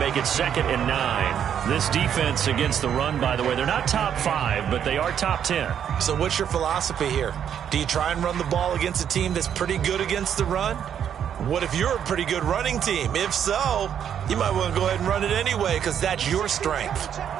it 2nd and 9. This defense against the run, by the way, they're not top 5, but they are top 10. So what's your philosophy here? Do you try and run the ball against a team that's pretty good against the run? What if you're a pretty good running team? If so, you might want to go ahead and run it anyway because that's your strength.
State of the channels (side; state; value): left; quieter; 8.9 dB